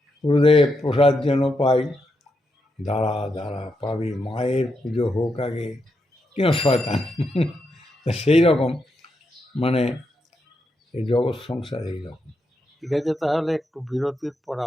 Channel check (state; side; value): normal; both; correlation 0.83